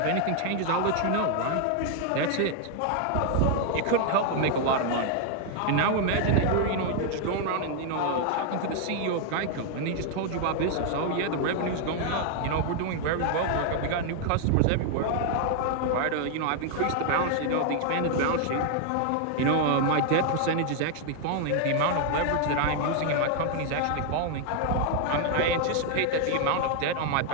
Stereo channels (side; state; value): both; different; correlation 0.00